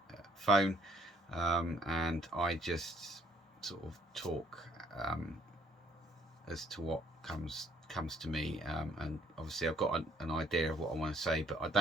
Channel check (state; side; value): normal; both; correlation 0.65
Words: phone, and I just sort of talk as to what comes to me, and obviously I've got an idea of what I want to say, but I